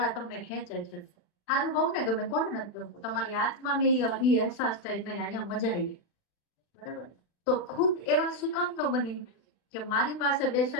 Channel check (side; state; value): right; late; 39 ms